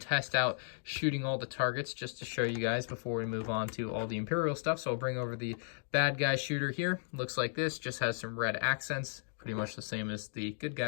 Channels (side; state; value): right; silent; digital silence